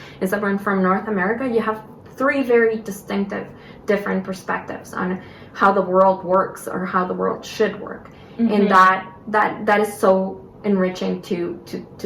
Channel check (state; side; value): identical; both; correlation 1.00